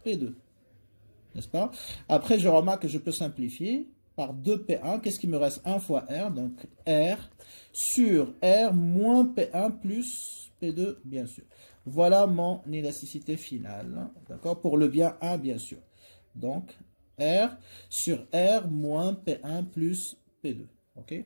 P2. N'est-ce pas? Après, je remarque que je peux simplifier par 2P1. Qu'est-ce qui me reste? 1 fois R. Donc, R sur R moins P1 plus P2, bien sûr. Voilà mon élasticité finale. D'accord? Pour le bien 1, bien sûr. Donc, R sur R moins P1 plus P2. OK?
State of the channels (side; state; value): both; inverted; correlation -1.00